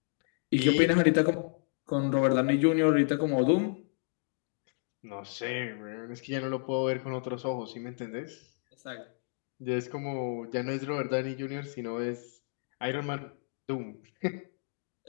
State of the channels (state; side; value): silent; right; digital silence